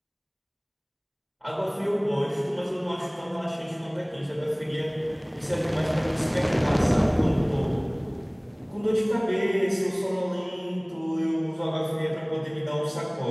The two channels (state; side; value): identical; both; correlation 1.00